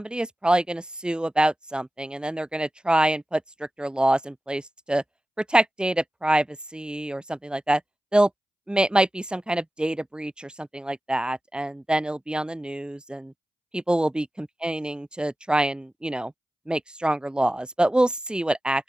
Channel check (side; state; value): both; normal; correlation 0.95